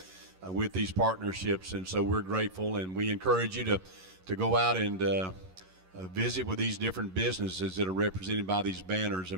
with these partnerships, and so we're grateful, and we encourage you to go out and visit with these different businesses that are represented by these banners,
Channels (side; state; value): left; late; 11 ms